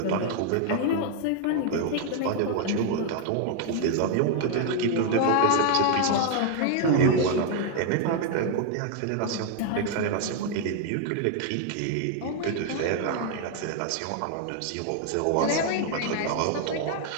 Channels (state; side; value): different; both; correlation 0.00